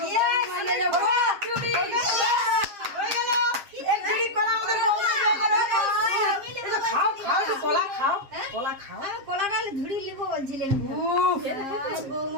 মানে যাবো। হয়ে গেল। এক ঝুড়ি কলা আমাদের বৌমা হয়ে গেল। খাও একটু কলা খাও। আমি কলাটা ঝুড়ি লিখবো বলছিলেন। উফ,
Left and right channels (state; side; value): late; left; 7.4 ms